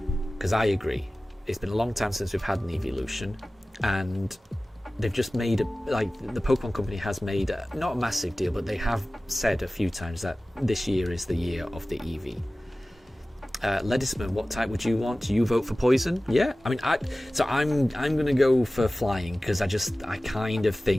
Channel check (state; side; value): normal; both; correlation 0.97